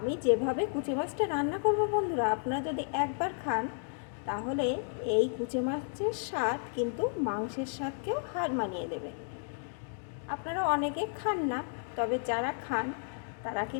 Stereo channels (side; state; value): right; silent; 56 dB below the other